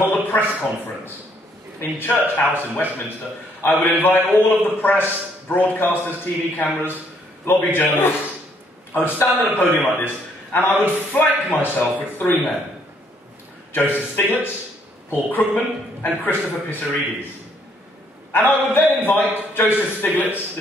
a press conference in Church House in Westminster. I would invite all of the press, broadcasters, TV cameras, lobby journalists. I would stand at a podium like this, and I would flank myself with three men. Joseph Stiglitz, Paul Krugman, and Christopher Pissarides. And I would then invite Joseph Stiglitz,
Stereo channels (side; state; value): both; normal; correlation 0.68